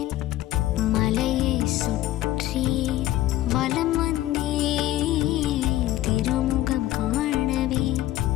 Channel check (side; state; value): right; quieter; 14.7 dB